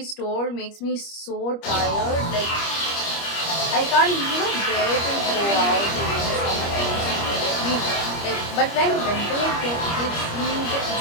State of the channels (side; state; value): right; late; 25 ms